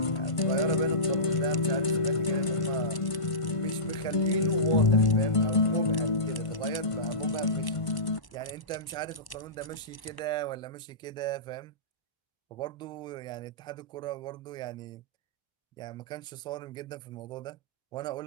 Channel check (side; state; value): right; late; 1.1 ms